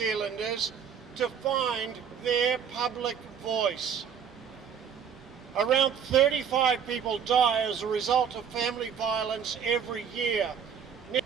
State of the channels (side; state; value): left; quieter; 7.6 dB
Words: to find their public voice. Around 35 people die as a result of family violence every year.